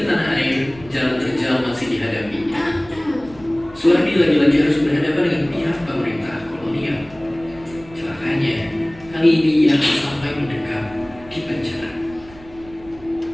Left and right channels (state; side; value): noise; right; rumble, 22 dB below the sound